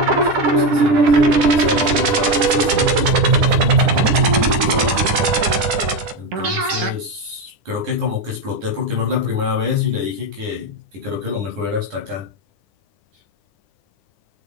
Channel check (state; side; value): late; left; 9.9 ms